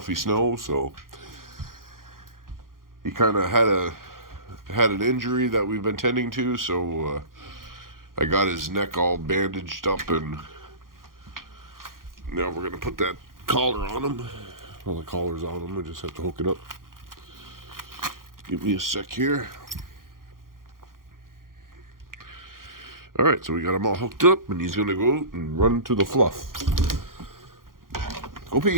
snow, so he kind of had an injury that we've been tending to, so I got his neck all bandaged up, and now we're going to put that collar on him. Well, the collar's on him, I just have to hook it up. Give me a sec here. Alright, so we got him all hooked up, and he's going to go out and run to the fluff. Go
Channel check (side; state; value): left; late; 0.91 ms